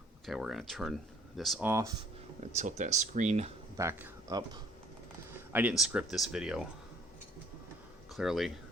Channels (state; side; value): normal; both; correlation 0.58